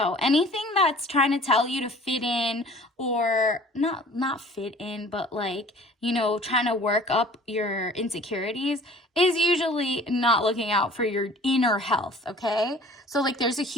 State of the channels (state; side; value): normal; both; correlation 0.49